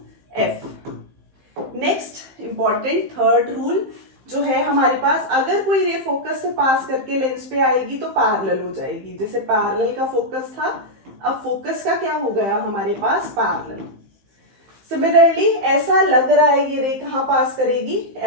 F। Next important third rule, जो है हमारे पास, अगर कोई रे फोकस से पास करके लेंस पे आएगी तो पैरेलल हो जाएगी। जैसे पैरेलल का फोकस था, अब फोकस का क्या हो गया हमारे पास, पैरेलल। सिमिलरली ऐसा लग रहा है ये रे कहाँ पास करेगी,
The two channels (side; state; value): left; late; 15 ms